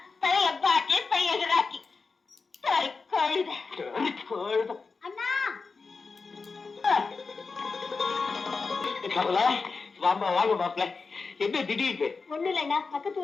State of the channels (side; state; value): right; quieter; 4.5 dB